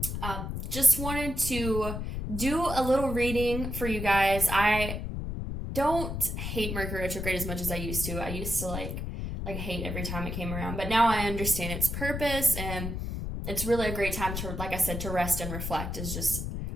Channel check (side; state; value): left; noise; rumble, 4 dB below the sound